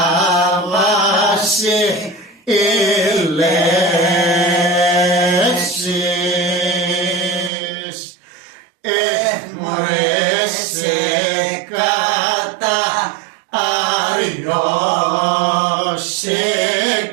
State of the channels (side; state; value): left; drops out; at 7.5 s